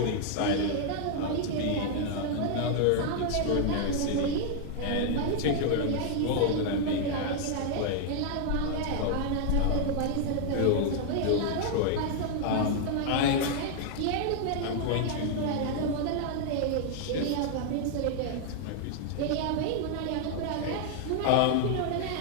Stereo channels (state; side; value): different; both; correlation 0.00